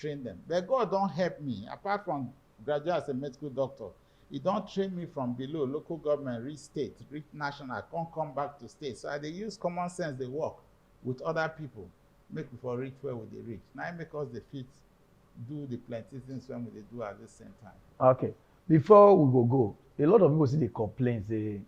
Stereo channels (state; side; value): identical; both; correlation 1.00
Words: them. But God don't help me. Apart from graduate as a medical doctor, He don't train me from below, local government, reach state, reach national, I can't come back to state. So they use common sense, they work with other people, make for reach where would they reach. Now it make us the fit do the plenty things when we do at the same time. Okay. Before we go, a lot of people see the complaints, say